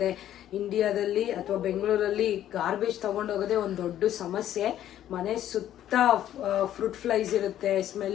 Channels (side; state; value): right; quieter; 11.8 dB